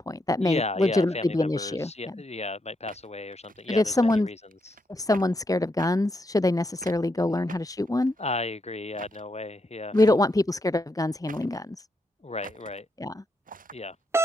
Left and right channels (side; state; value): both; normal; correlation 0.81